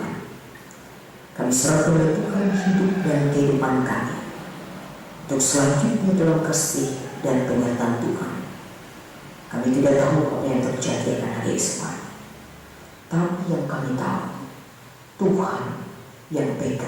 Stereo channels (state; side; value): identical; both; correlation 1.00